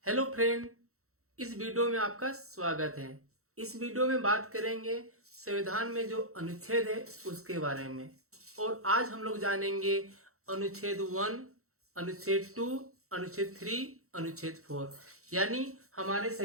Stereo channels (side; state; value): left; late; 0.64 ms